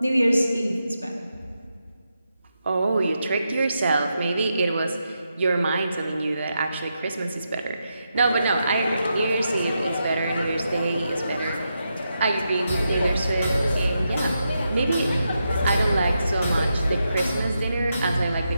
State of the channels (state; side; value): inverted; both; correlation -0.85